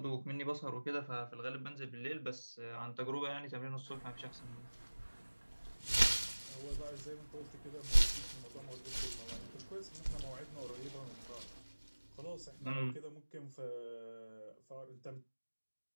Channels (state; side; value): inverted; both; correlation -1.00